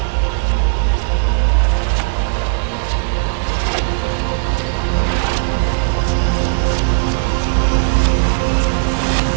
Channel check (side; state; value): left; silent; digital silence